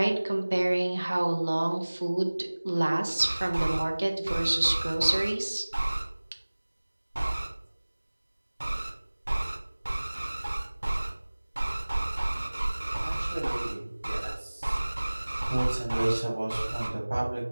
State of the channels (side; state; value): both; inverted; correlation -1.00